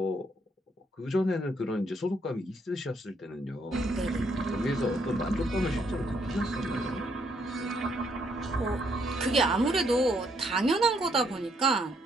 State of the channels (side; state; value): both; normal; correlation 0.72